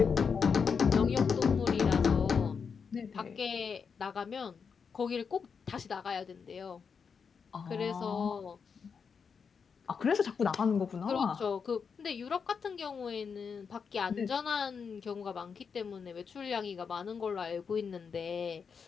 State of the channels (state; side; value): quieter; right; 6.0 dB